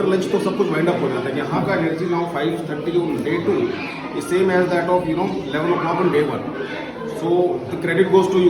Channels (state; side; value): identical; both; correlation 1.00